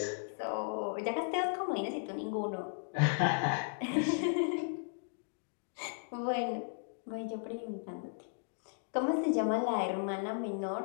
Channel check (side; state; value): right; silent; digital silence